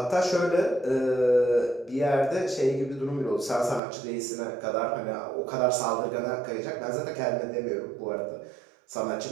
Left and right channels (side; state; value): left; drops out; at 3.8 s